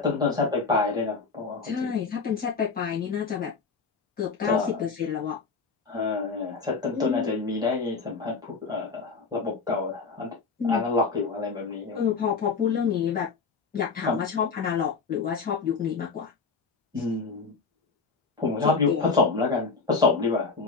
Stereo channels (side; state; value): right; quieter; 4.7 dB